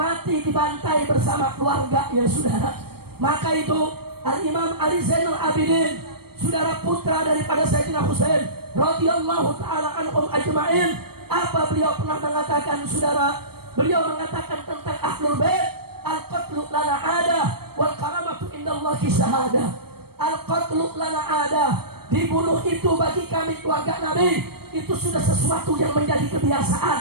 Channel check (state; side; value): late; left; 0.95 ms